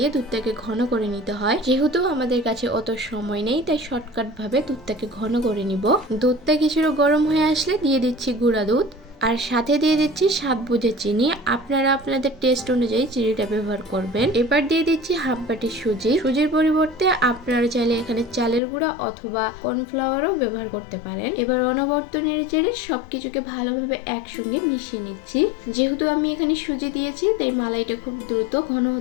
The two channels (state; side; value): drops out; right; at 18.6 s